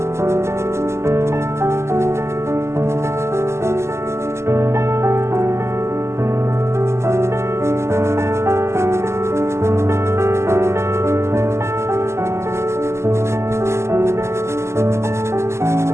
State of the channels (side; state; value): left; late; 0.13 ms